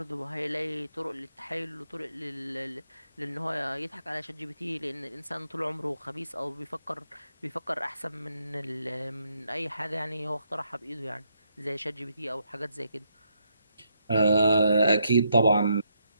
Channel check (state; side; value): inverted; both; correlation -0.77